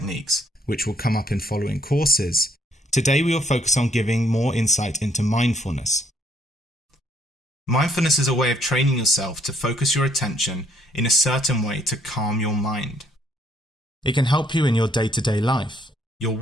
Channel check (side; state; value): both; normal; correlation 0.68